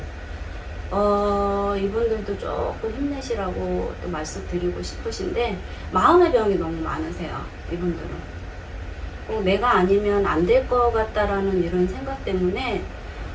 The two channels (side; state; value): both; identical; correlation 1.00